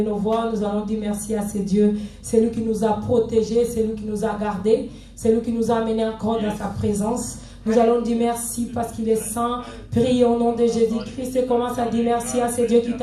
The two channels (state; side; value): identical; both; correlation 1.00